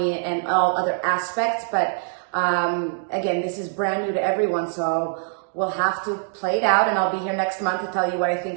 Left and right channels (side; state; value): left; silent; digital silence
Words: and all other aspects. But again, this is brand new to everyone. So we'll have to play it out, and I'll be here next month to tell you what I